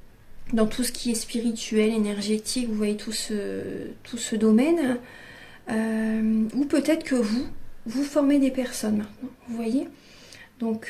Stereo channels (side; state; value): both; identical; correlation 1.00